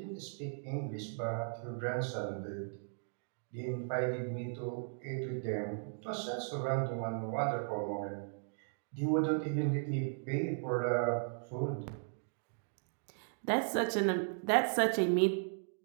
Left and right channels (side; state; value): left; silent; digital silence